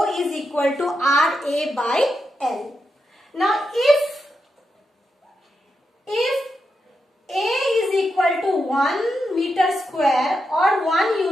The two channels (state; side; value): normal; both; correlation 0.86